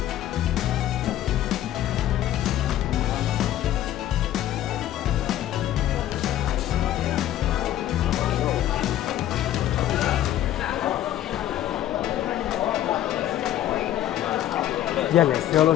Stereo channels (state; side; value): quieter; right; 12.6 dB